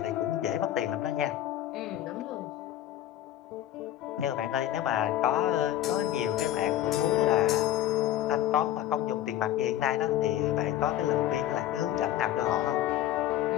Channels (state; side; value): quieter; right; 12.6 dB